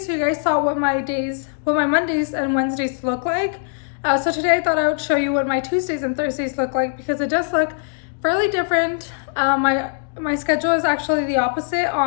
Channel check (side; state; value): right; silent; digital silence